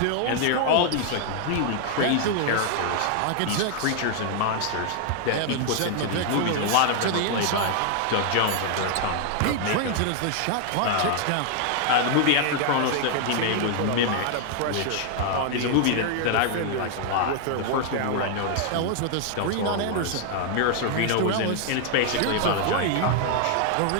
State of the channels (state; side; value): different; both; correlation 0.00